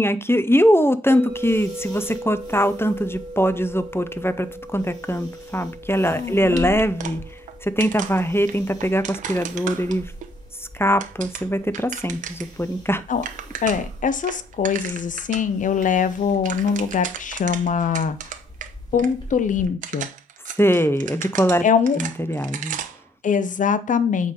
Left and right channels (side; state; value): both; normal; correlation 0.71